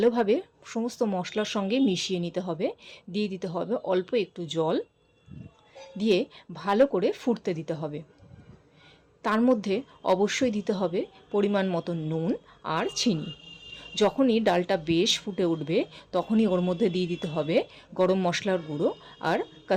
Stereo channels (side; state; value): both; identical; correlation 1.00